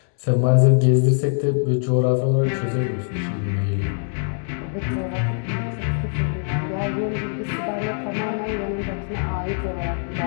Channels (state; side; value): silent; right; digital silence